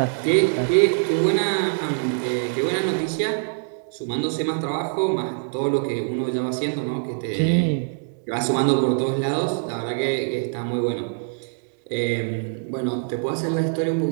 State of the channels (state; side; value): silent; left; digital silence